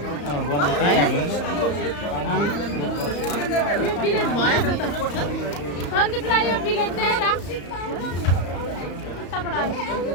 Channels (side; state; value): right; late; 34 ms